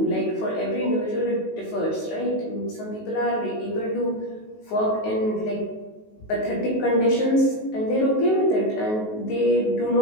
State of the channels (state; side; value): late; right; 19 ms